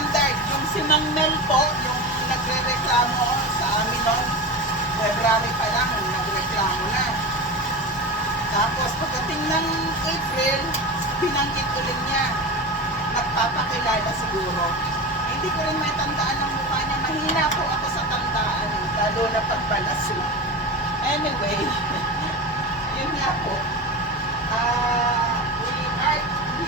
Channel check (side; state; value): both; normal; correlation 0.25